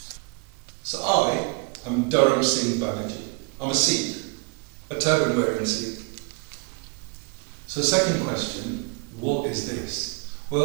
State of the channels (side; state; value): left; quieter; 32.7 dB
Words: So I am Dharam Singh Banerjee. I'm a Sikh, a turban wearing Sikh. So second question, what is this?